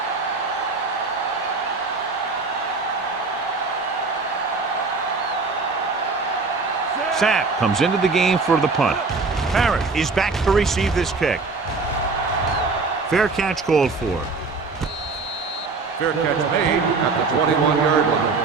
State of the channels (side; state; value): left; quieter; 4.2 dB